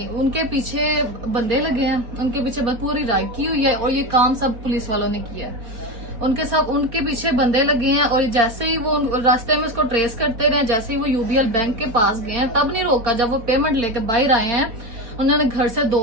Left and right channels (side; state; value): left; late; 4.4 ms